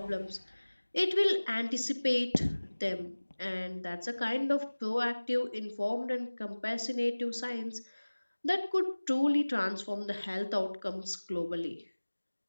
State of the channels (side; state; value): both; inverted; correlation -1.00